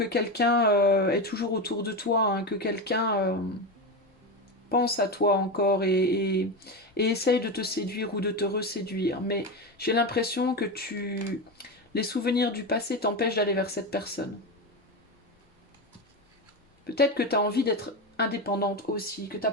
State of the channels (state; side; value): normal; both; correlation 0.17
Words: quelqu'un est toujours autour de toi, hein, que quelqu'un pense à toi encore et essaye de te séduire ou de te reséduire. Mais j'ai l'impression que les souvenirs du passé t'empêchent d'aller vers cette personne. Peut-être que tu as envie d'être indépendante aussi, que tu n'as